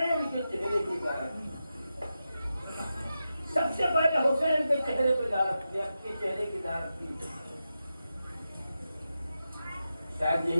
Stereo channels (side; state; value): both; inverted; correlation -0.90